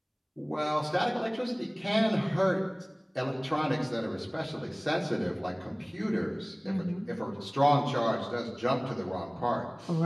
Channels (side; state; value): both; identical; correlation 1.00